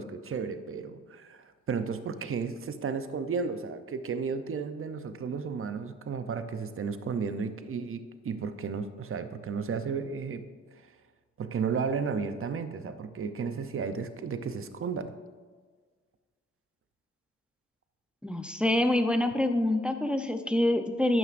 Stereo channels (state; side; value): normal; both; correlation 0.61